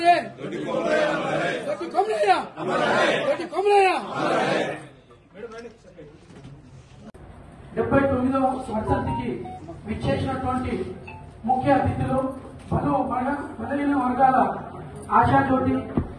डॉक्टर कमलैया డెబ్బై 79వ వర్ధంతికి విచ్చేసినటువంటి ముఖ్య అతిథులు పలు బలహీన వర్గాల ఆశాజ్యోతి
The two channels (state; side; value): identical; both; correlation 1.00